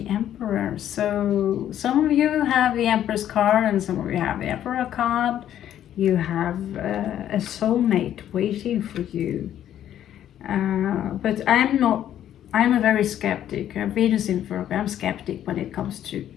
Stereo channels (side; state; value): right; quieter; 11.0 dB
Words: Emperor, so some of you have the Empress card and some of you have the Emperor card. You have a soulmate waiting for you. But I'm a very skeptic. Venus in Virgo, I'm skeptic when it comes to